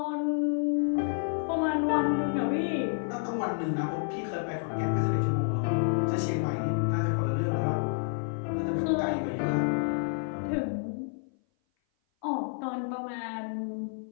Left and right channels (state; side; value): silent; right; 56 dB below the other